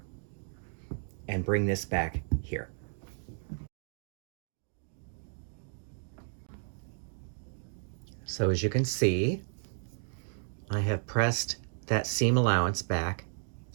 and bring this back here. So as you can see, I have pressed that seam allowance back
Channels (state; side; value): silent; left; digital silence